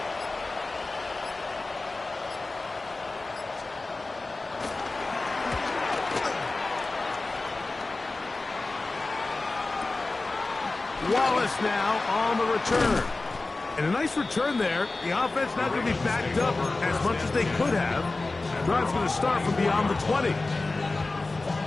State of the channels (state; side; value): quieter; right; 3.3 dB